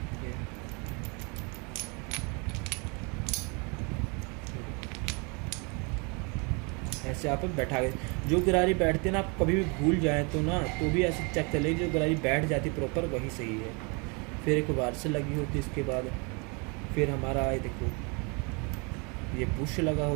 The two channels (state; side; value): quieter; left; 32.0 dB